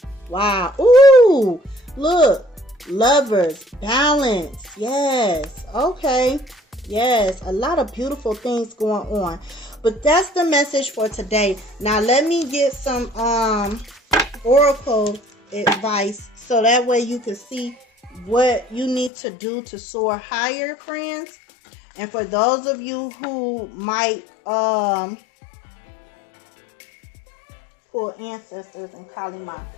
Wow. Ooh. Look. Lovers. Balance. Yes. Okay. Yes. A lot of beautiful things going on. But that's the message for today. Now let me get some oracle advice so that way you can see what you need to do to soar higher, friends. And for those of you who might pull ancestors and Kali Ma.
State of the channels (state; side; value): drops out; right; at 19.1 s